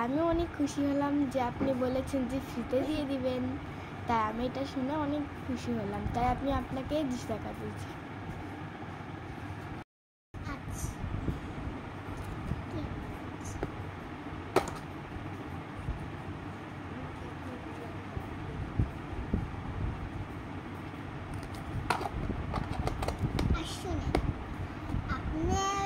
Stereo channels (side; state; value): both; identical; correlation 1.00